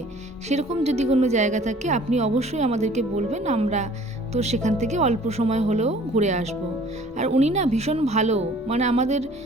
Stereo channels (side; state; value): both; normal; correlation 0.52